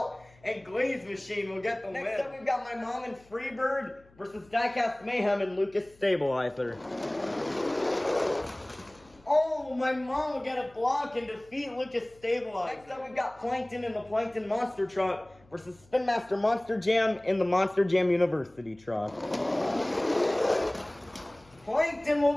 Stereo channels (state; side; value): noise; left; hum, 28 dB below the sound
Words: and Glaze Machine will get the win. Next up, we've got My Mom and Freebird versus Diecast Mayhem and Lucas Stabilizer. Oh, My Mom will get a block and defeat Lucas Stabilizer. Next up, we've got Plankton and the Plankton Monster Truck versus Spin Master Monster Jam and the Monster Jam University Truck. Plankton